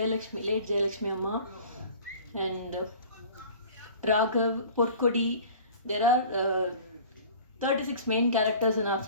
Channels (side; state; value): both; inverted; correlation -0.44